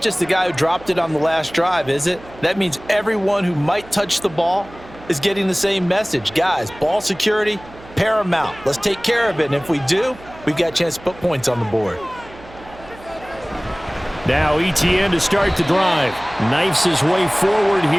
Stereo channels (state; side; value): noise; right; hum, 20 dB below the sound